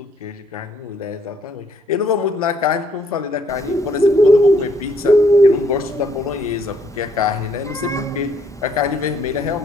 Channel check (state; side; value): normal; both; correlation 0.68